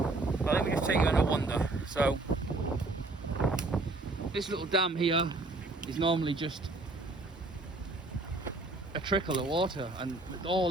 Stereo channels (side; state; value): left; quieter; 3.0 dB